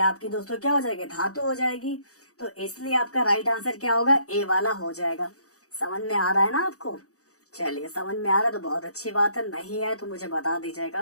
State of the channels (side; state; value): right; late; 0.66 ms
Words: आपकी दोस्तों क्या हो जाएगी, धातु हो जाएगी। तो इसलिए आपका राइट आंसर क्या होगा, ए वाला हो जाएगा। समझ में आ रहा है ना आपको? चलिए समझ में आ रहा है तो बहुत अच्छी बात है, नहीं है तो मुझे बता